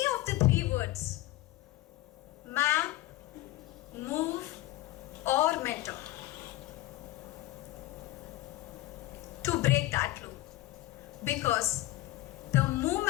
of the 3 words: map, move, or mentor, to break that loop. Because the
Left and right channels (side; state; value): right; quieter; 17.1 dB